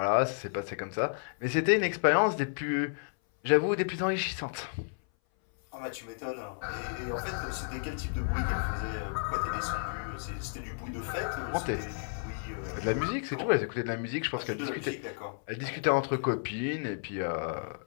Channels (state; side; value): silent; right; 56 dB below the other